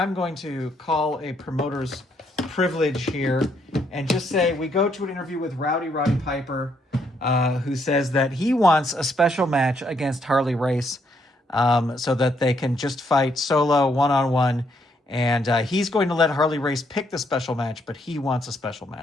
to call a promoter's privilege here and just say we go to an interview with Roddy Piper, who says that he wants a special match against Harley Race, so that they can just fight solo, one-on-one. And he's going to let Harley Race pick the special match, but he wants a special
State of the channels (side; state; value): both; normal; correlation 0.73